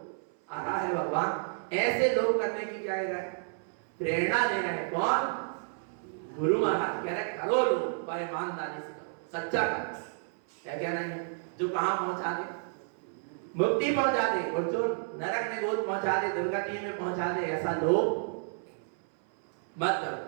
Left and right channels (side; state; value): left; silent; 57 dB below the other